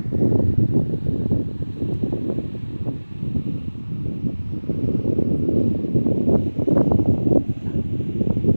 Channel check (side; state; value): both; inverted; correlation -1.00